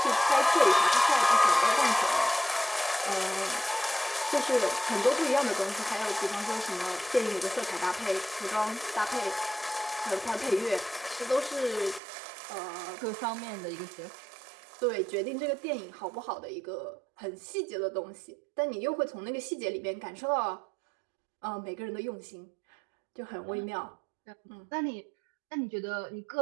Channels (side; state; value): left; drops out; at 12.0 s